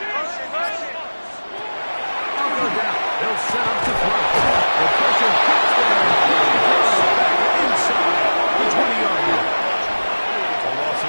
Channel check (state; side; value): inverted; both; correlation -1.00